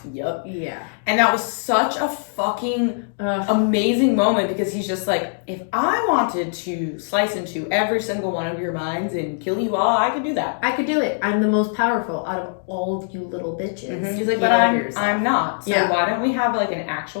Yup. Yeah. And that was such a fucking amazing moment because he's just like, if I wanted to slice into every single one of your minds and kill you all, I could do that. I could do it. I'm the most powerful out of all of you little bitches. Mm-hmm. He's like, but I'm not. So why don't we have like an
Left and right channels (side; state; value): right; silent; digital silence